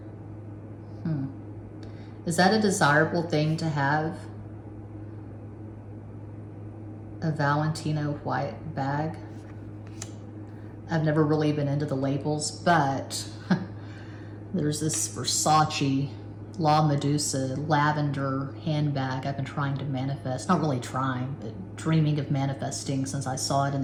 Is that a desirable thing to have? A Valentino white bag? I've never really been into the labels, but there's this Versace La Medusa lavender handbag I've been trying to manifest. Not really trying, but dreaming of manifesting since I saw it in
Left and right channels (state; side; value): identical; both; correlation 1.00